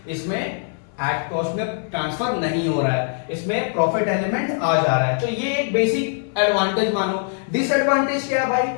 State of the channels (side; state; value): right; silent; 60 dB below the other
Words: इसमें एट कॉस्ट में ट्रांसफर नहीं हो रहा है, इसमें प्रॉफिट एलिमेंट आ जा रहा है। तो ये एक बेसिक एडवांटेज मानो। डिसएडवांटेज क्या है भाई?